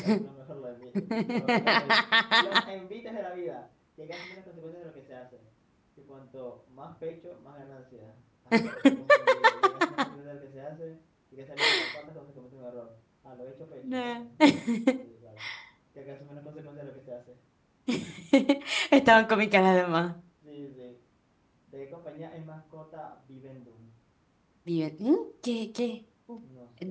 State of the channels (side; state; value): both; identical; correlation 1.00